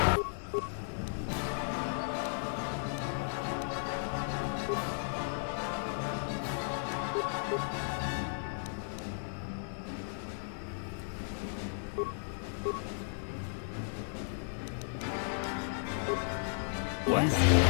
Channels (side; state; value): right; silent; digital silence